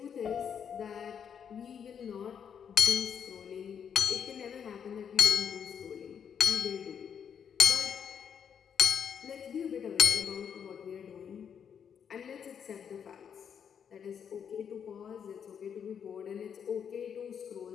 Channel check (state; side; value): quieter; right; 7.7 dB